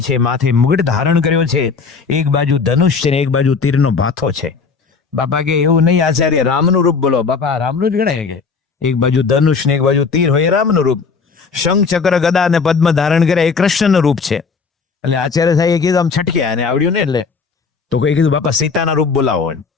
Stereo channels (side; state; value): right; quieter; 5.1 dB